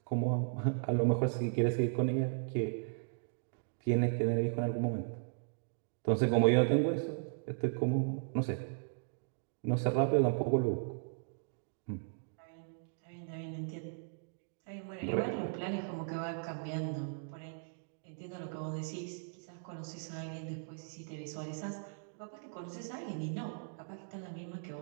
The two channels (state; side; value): silent; left; digital silence